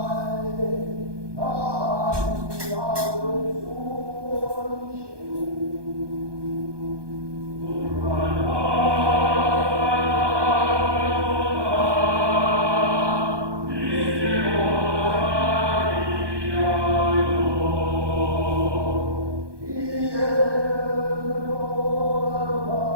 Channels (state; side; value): late; left; 1.2 ms